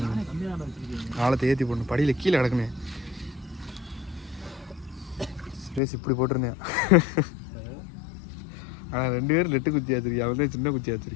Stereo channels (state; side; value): drops out; right; at 5.8 s